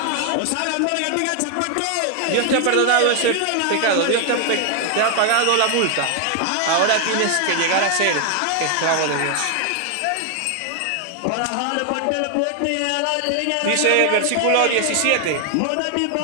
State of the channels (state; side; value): different; both; correlation 0.00